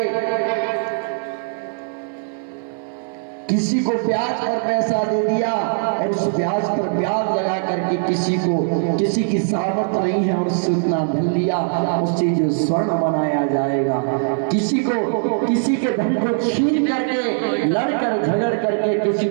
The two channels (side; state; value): left; silent; digital silence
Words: किसी को ब्याज पर पैसा दे दिया और उस ब्याज पर ब्याज लगा करके किसी की सामर्थ नहीं है और उससे उतना धन लिया, उससे जो स्वर्ण बनाया जाएगा। किसी के धन को छीन करके लड़कर झगड़ करके किसी